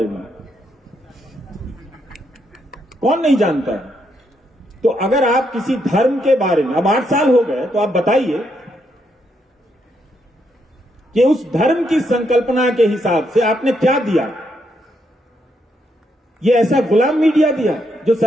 में, कौन नहीं जानता है? तो अगर आप किसी धर्म के बारे में, अब 8 साल हो गए, तो आप बताइए कि उस धर्म की संकल्पना के हिसाब से आपने क्या दिया? ये ऐसा गुलाम मीडिया दिया जो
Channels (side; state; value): both; normal; correlation 0.77